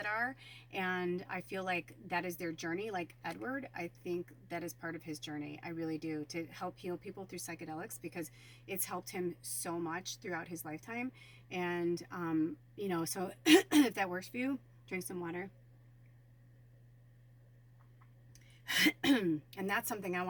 are, and I feel like that is their journey. Like Edward, I think that is part of his journey. I really do, to help heal people through psychedelics, because it's helped him so much throughout his lifetime. And so if that works for you, drink some water. And that's something I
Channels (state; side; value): identical; both; correlation 1.00